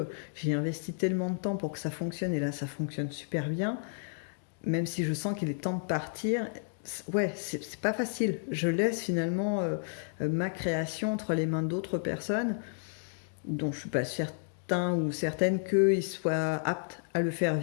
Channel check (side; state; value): right; silent; digital silence